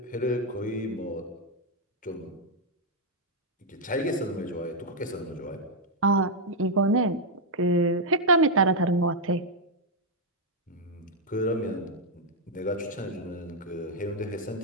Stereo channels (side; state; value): both; normal; correlation -0.02